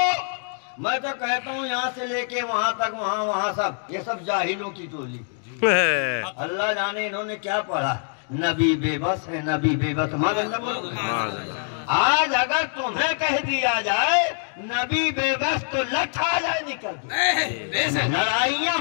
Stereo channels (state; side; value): silent; right; 62 dB below the other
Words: میں تو کہتا ہوں یہاں سے لے کے وہاں تک وہاں سب یہ سب جاہلوں کی ٹولی اللہ جانے انہوں نے کیا پڑھا نبی بے بس ہے نبی بے بس آج اگر تمہیں کہہ دیا جائے نبی بے بس تو لٹھ آ جائے نکل بے شک لڑائیاں